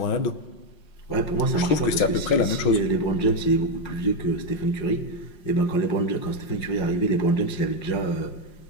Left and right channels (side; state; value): right; late; 5.5 ms